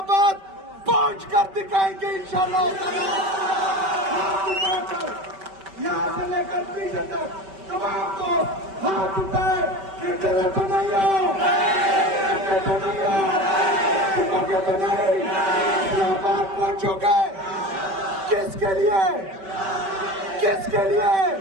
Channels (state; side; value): late; left; 5.2 ms